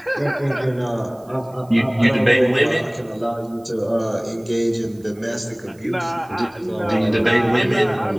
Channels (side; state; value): right; noise; hiss, 29 dB below the sound